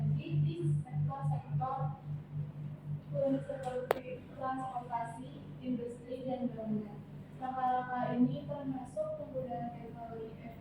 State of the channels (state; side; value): identical; both; correlation 1.00